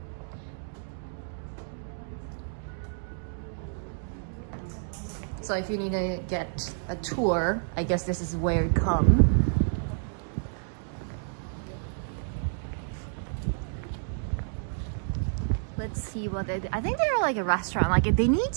So if you need to get a tour, I guess this is where you come. Let's see what they do. I think they're like a restaurant. Like they need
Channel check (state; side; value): silent; left; digital silence